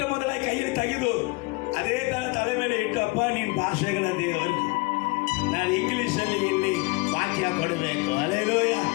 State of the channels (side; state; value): right; quieter; 26.2 dB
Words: ಮೊದಲಾಗಿ ಕೈಯಲ್ಲಿ ತೆಗೆದು ಅದೇ ತರ ತಲೆ ಮೇಲೆ ಇಟ್ಟು, ಅಪ್ಪ ನೀನ್ ಭಾಷೆಗಳ ದೇವರು, ನಾನು ಇಂಗ್ಲಿಷ್ ಅಲ್ಲಿ ಇಲ್ಲಿ ವಾಕ್ಯ ಕೊಡಬೇಕು. ಅಲೆಲೂಯ.